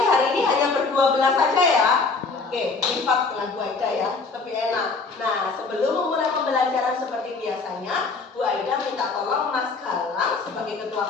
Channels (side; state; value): right; quieter; 4.2 dB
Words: hari ini hanya berdua belas saja ya? Oke, lipat dengan Bu Aida ya, lebih enak. Nah, sebelum memulai pembelajaran seperti biasanya, Bu Aida minta tolong Mas Galang sebagai